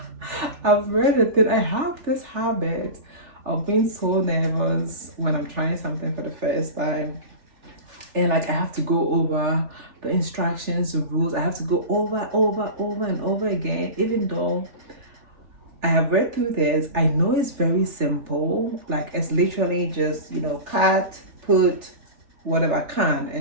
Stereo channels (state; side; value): late; left; 3.4 ms